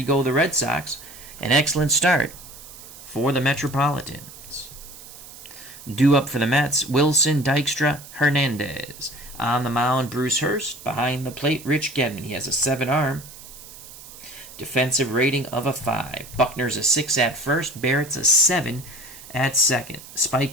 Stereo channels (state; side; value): noise; right; hiss, 17 dB below the sound